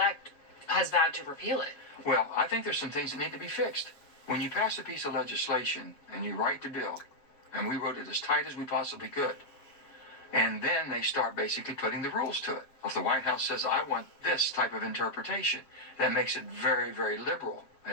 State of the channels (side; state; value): right; late; 7.7 ms